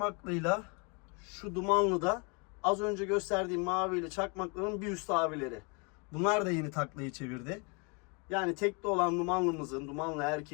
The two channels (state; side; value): quieter; right; 33.2 dB